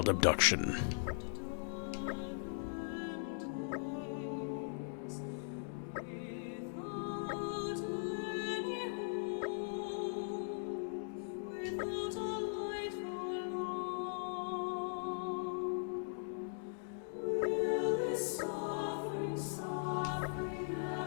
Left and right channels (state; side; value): silent; right; digital silence